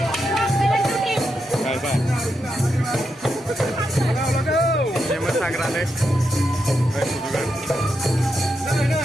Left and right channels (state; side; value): normal; both; correlation 0.85